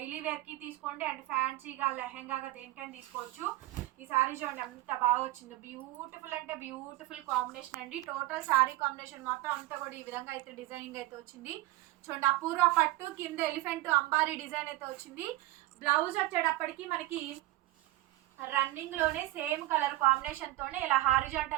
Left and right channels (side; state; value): left; quieter; 17.7 dB